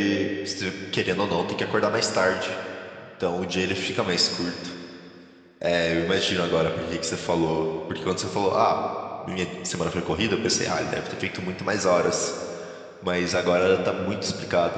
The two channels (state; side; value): identical; both; correlation 1.00